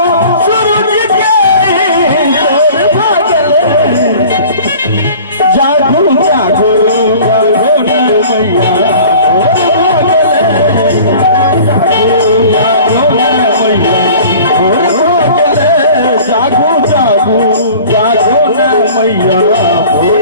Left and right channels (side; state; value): both; inverted; correlation -0.45